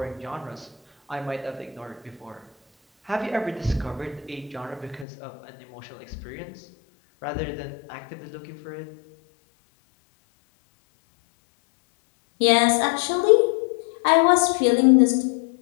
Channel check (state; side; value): drops out; right; at 5.1 s